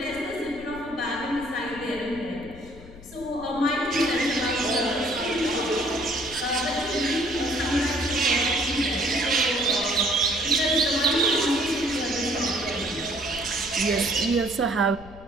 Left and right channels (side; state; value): left; noise; rumble, 18 dB below the sound